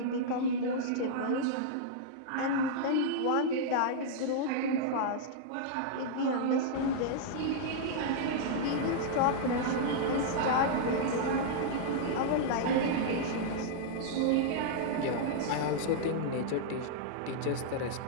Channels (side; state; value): both; different; correlation -0.02